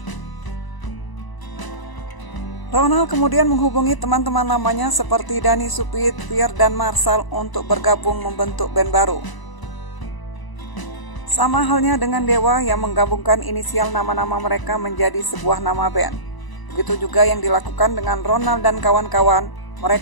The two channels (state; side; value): late; right; 1.0 ms